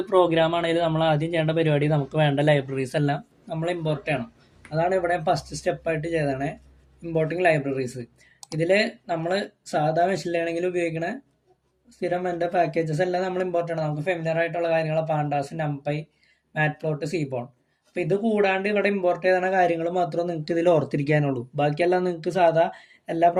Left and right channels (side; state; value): both; identical; correlation 1.00